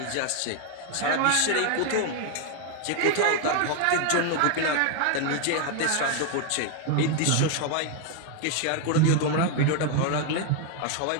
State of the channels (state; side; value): different; both; correlation 0.01